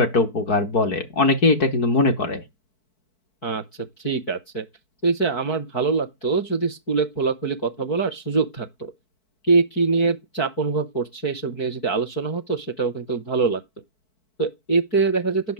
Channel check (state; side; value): late; right; 4.6 ms